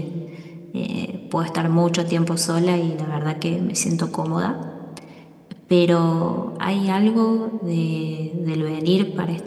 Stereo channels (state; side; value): identical; both; correlation 1.00